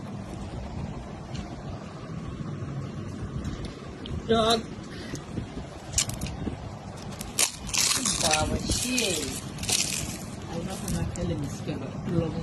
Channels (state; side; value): identical; both; correlation 1.00